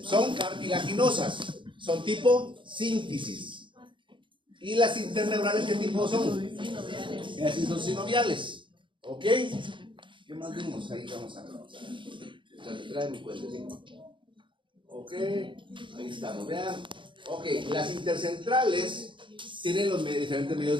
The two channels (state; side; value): late; left; 0.24 ms